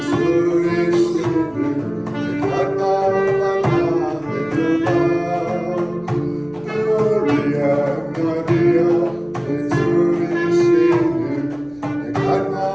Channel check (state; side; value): noise; left; rumble, 30 dB below the sound